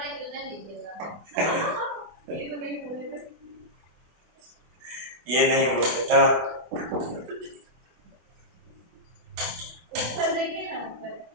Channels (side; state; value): left; late; 24 ms